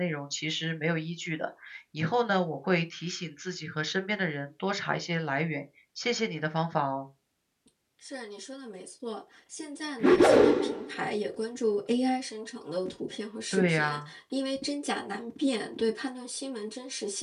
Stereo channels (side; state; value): both; identical; correlation 1.00